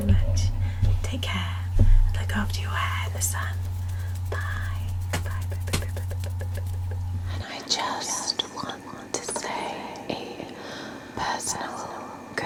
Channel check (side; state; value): both; identical; correlation 1.00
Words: much. Take care and look after your hair in the sun. Bye. Bye. Bye. Bye. Bye. Bye. Bye. Bye. And I just want to say a personal